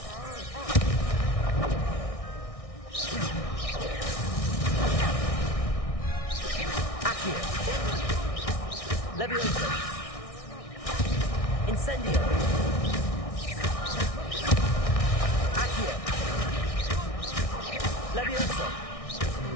Accio! Leviosa! Incendio! Accio! Leviosa!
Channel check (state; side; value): late; right; 1.6 ms